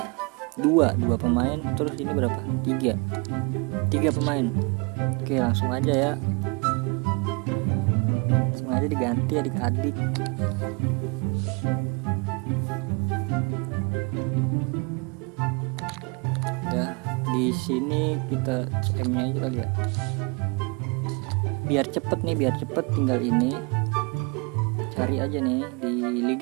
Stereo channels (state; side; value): quieter; left; 31.3 dB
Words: dua pemain. Terus ini berapa? 3 pemain. Oke, langsung aja ya. Langsung aja diganti adik-adik. Ya, di sini kita CM-nya aja kali ya. Biar cepet tinggal ini. Cari aja nih di